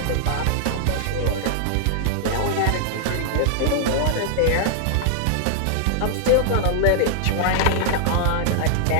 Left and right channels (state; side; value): different; both; correlation -0.01